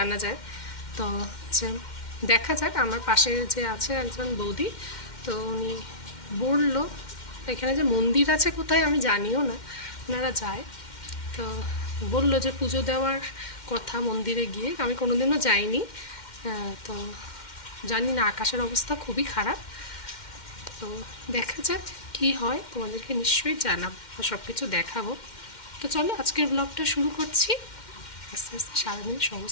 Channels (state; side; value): late; right; 2.1 ms